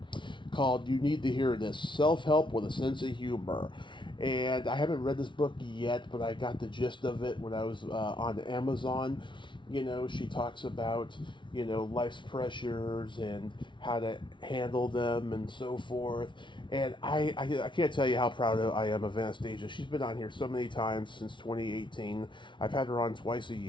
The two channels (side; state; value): right; late; 0.24 ms